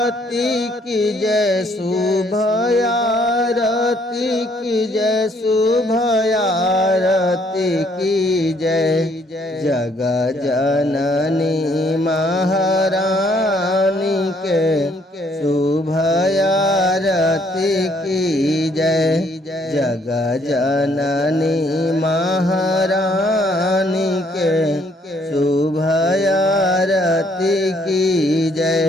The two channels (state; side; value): normal; both; correlation 0.66